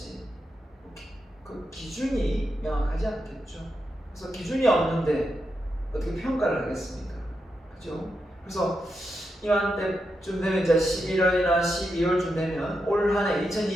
그 기준이 명확하지 않겠죠. 그래서 기준이 없는데 어떻게 평가를 하겠습니까? 그죠? 그래서 이맘때쯤 되면 이제 11월이나 12월쯤 되면 올 한해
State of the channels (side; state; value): both; normal; correlation 0.86